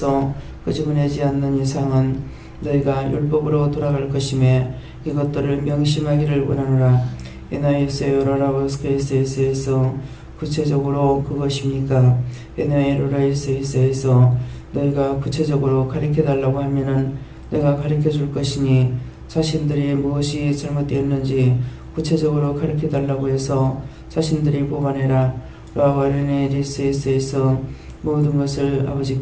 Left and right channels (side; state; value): both; identical; correlation 1.00